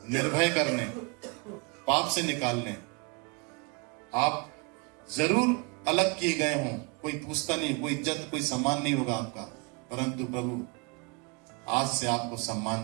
निर्भय करने, पाप से निकालने। आप जरूर अलग किए गए हों, कोई पूछता नहीं, कोई इज्जत, कोई सम्मान नहीं होगा आपका, परंतु प्रभु आज से आपको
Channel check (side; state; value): left; quieter; 31.4 dB